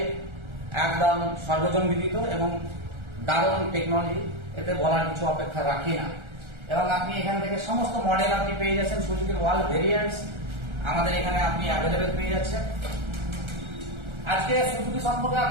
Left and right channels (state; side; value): late; left; 1.3 ms